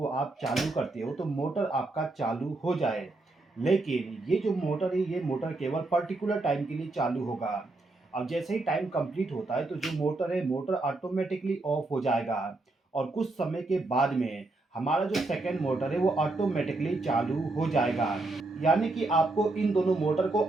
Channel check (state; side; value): quieter; left; 3.1 dB